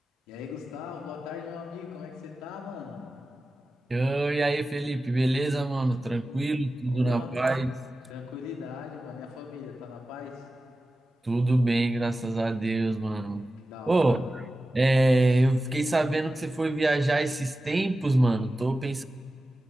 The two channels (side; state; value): both; normal; correlation 0.94